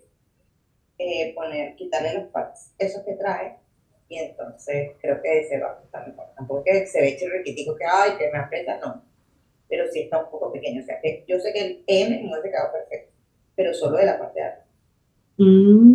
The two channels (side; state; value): both; identical; correlation 1.00